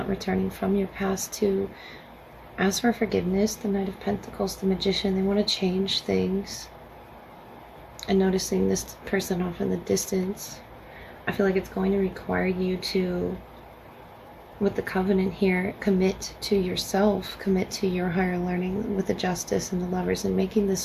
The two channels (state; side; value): identical; both; correlation 1.00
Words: returning from your past to ask for forgiveness. The Knight of Pentacles, the Magician, they want to change things. And noticing this person off in the distance, I feel like it's going to require you to, with the Covenant here, commit to yourself, commit to your higher learning with the Justice and the Lovers, and making this